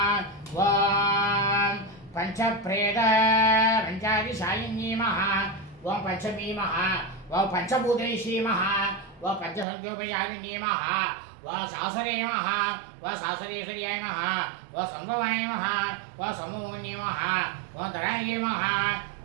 व पंचप्रेत पंचादिशायिन्ये नमः व पंचमी नमः व पंचभूतेशी नमः व पंचसंख्योपचारिण्ये नमः व सासरे नमः व सासरेश्वर्याय नमः व संभवाय नमः व संभवन्ये नमः व धराय नमः व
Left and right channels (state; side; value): drops out; left; at 9.7 s